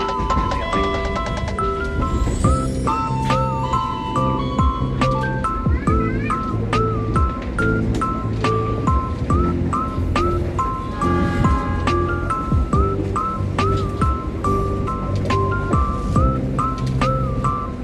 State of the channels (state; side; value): identical; both; correlation 1.00